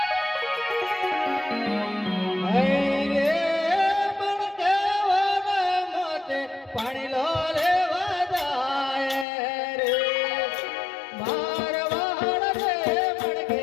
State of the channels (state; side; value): drops out; right; at 9.2 s